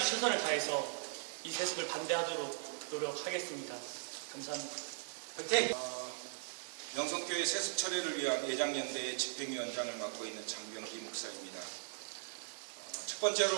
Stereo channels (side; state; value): left; silent; digital silence